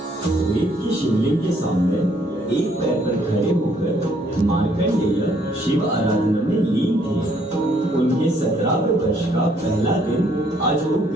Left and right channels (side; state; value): both; normal; correlation 0.66